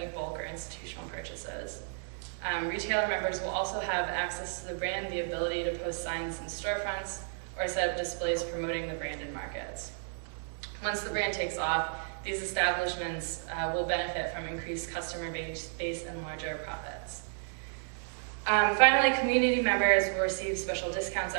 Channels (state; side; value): silent; left; digital silence